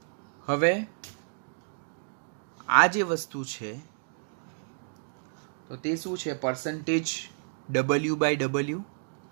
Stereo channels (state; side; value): silent; left; digital silence